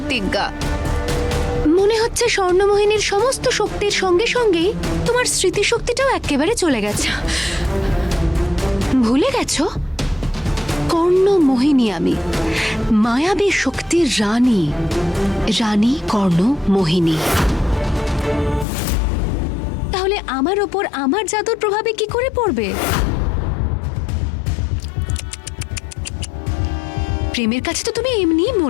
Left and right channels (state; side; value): drops out; right; at 18.7 s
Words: মনে হচ্ছে স্বর্ণমোহিনীর সমস্ত শক্তির সঙ্গে সঙ্গেই তোমার স্মৃতিশক্তিটাও একেবারে চলে গেছে। ভুলে গেছো কর্ণমোহিনী আমি, মায়াবী শক্তির রানী, রানী কর্ণমোহিনী। তাহলে আমার ওপর আমার জাদুর প্রভাবে কি করে পড়বে? প্রেমের কাছে তো তুমি এমনিই